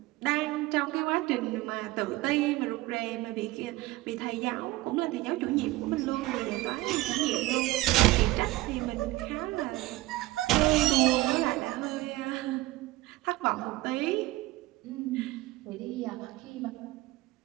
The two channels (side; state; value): left; quieter; 18.6 dB